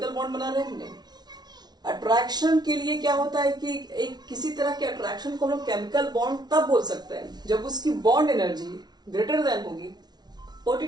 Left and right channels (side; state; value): left; late; 0.19 ms